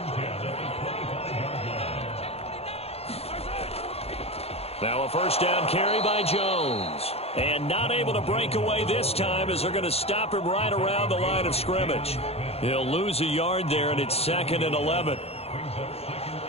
Now a first down carry by Jones. And not able to break away this time as they're going to stop him right around the line of scrimmage. He'll lose a yard there, and it's 2nd and 11.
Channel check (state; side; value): late; right; 0.29 ms